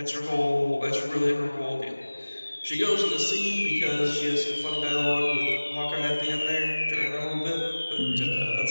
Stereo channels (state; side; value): inverted; both; correlation -1.00